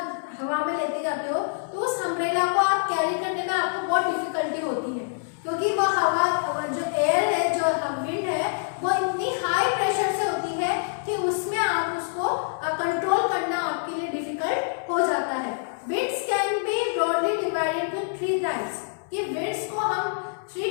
हवा में लेते जाते हो तो उस अम्ब्रेला को आप कैरी करने में आपको बहुत डिफिकल्टी होती है, क्योंकि वह हवा जो एयर है, जो विंड है, वो इतनी हाई प्रेशर से होती है कि उसमें आप उसको कंट्रोल करना आपके लिए डिफिकल्ट हो जाता है। Winds can be broadly divided to 3 types, कि विंड्स को हम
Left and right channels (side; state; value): right; silent; 61 dB below the other